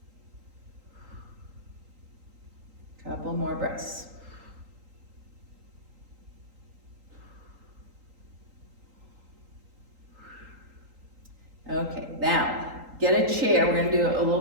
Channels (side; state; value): left; late; 3.8 ms